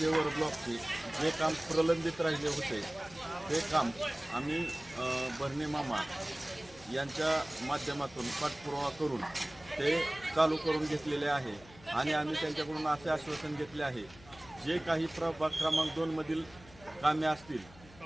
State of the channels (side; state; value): left; noise; hum, 22 dB below the sound